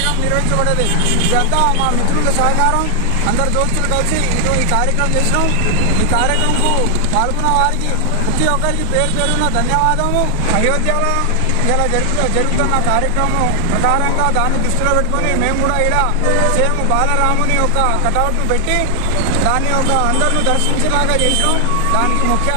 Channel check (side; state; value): both; different; correlation 0.00